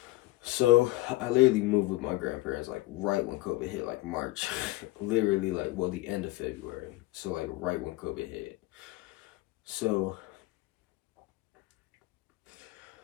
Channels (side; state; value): right; quieter; 18.8 dB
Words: So, I literally moved with my grandparents, like, right when COVID hit, like, March. Literally, like, well, the end of February. So, like, right when COVID hit. So,